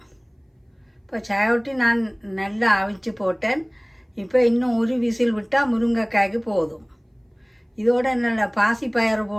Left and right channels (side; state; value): both; identical; correlation 1.00